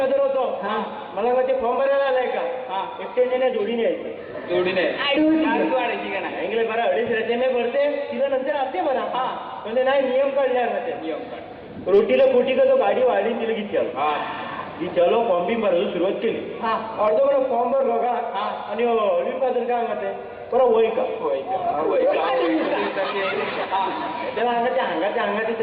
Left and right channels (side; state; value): both; identical; correlation 1.00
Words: होतो मला मग ते फॉर्म भरायला आलाय का एक्सटेंजन जोडीने यायची जोडीने वाढायची का नाही इंग्लिश बरा अडीच राहते मी भरते तिला नंतर असते बरा म्हणजे नाही नियम काढले नियम काढ रोटीला पोटी का तो गाडी वाढली तिला की चलो फॉर्म बी भरायला सुरुवात केली अर्धो बरं फॉर्म भरलो का आणि ऑलिन फादर काय म्हणते बरं वय का त्याला अंगाचे